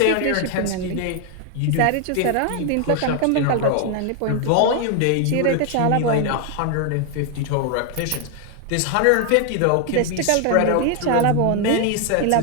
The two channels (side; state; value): both; different; correlation 0.00